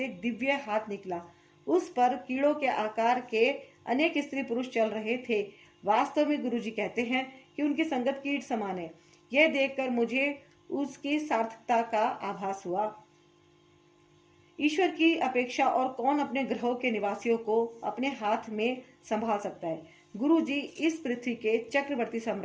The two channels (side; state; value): both; identical; correlation 1.00